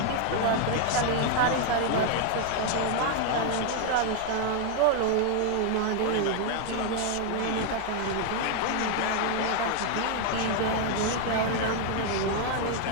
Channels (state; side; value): different; both; correlation 0.00